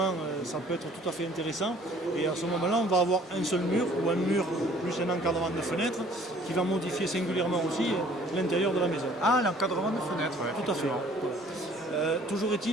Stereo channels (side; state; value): both; normal; correlation 0.55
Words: ça peut être tout à fait intéressant. Et à ce moment-là, on va avoir un seul mur ou un mur plus un encadrement de fenêtres qui va modifier singulièrement aussi l'intérieur de la maison. Ah, l'encadrement de fenêtres, oui. Tout à fait. Toujours